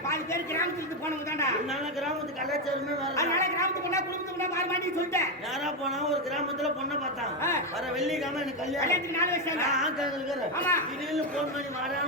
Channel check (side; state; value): both; normal; correlation 0.08